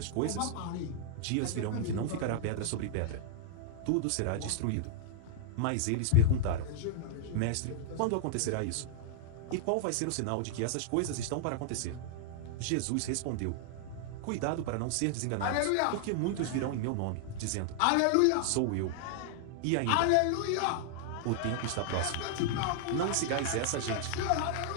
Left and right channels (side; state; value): both; different; correlation 0.00